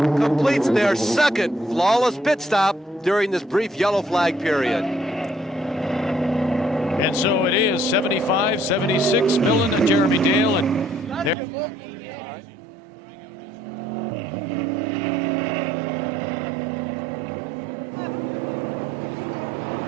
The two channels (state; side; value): drops out; left; at 11.4 s